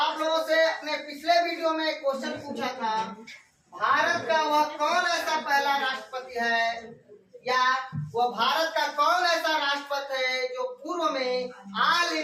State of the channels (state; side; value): identical; both; correlation 1.00